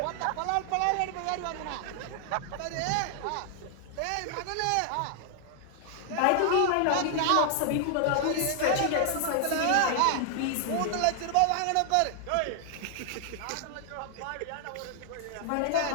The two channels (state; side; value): different; both; correlation 0.00